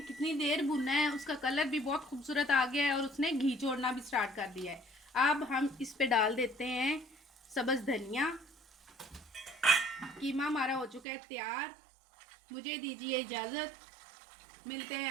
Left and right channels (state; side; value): drops out; left; at 11.0 s